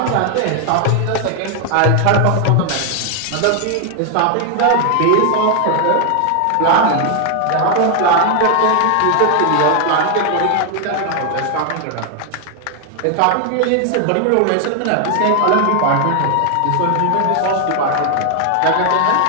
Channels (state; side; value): different; both; correlation 0.00